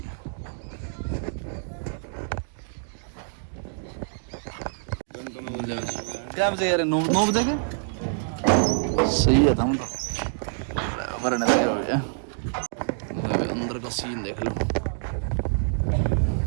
क्या बजे यार? 9 बजे के सही है। हम तो भरने लगे हो गया। अंदर का सीन देख लो।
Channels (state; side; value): silent; left; digital silence